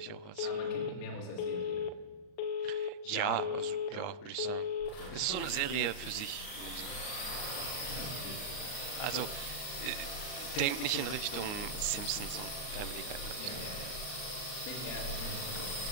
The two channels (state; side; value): late; right; 39 ms